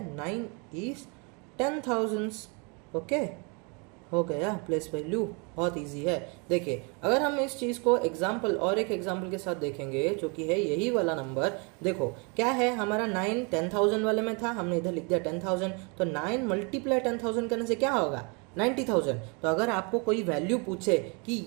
9 इज 10,000s। ओके, हो गया प्लेस वैल्यू, बहुत इजी है। देखिए अगर हम इस चीज़ को एग्जाम्पल और एक एग्जाम्पल के साथ देखेंगे, जो कि है यही वाला नंबर, देखो क्या है हमारा 9 10,000 वाले में था, हमने इधर लिख दिया 10,000, तो 9 मल्टीप्लाई 10,000 करने से क्या होगा 90,000। तो अगर आपको कोई वैल्यू पूछे कि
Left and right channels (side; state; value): left; quieter; 33.0 dB